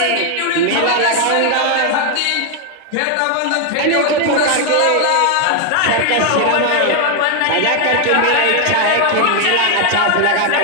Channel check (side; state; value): both; different; correlation 0.01